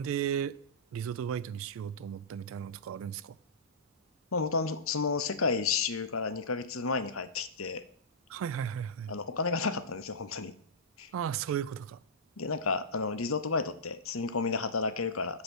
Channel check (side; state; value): both; normal; correlation -0.19